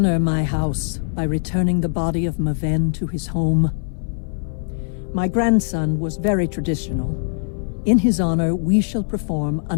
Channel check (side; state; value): right; silent; 59 dB below the other